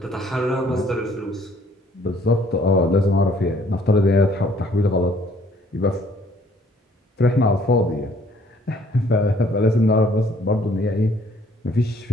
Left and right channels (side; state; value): both; normal; correlation 0.61